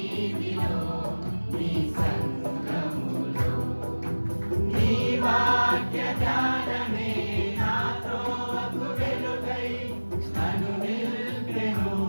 నీ సంఘములో. నీ వాక్య జ్ఞానమే నాతో వకు వెలుగై నన్ను నిలిపెను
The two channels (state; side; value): inverted; both; correlation -1.00